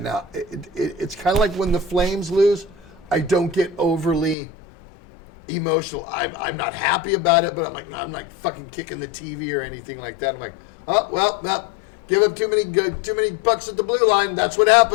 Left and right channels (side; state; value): right; drops out; at 4.4 s